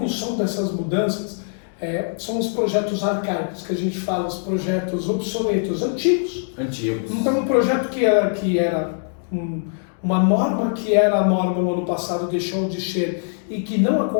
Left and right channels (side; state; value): right; silent; digital silence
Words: dessas mudanças são os projetos arcaicos que a gente fala, os projetos obsoletos, antigos. Então um projeto que era uma norma que era a norma no ano passado deixou de ser e que não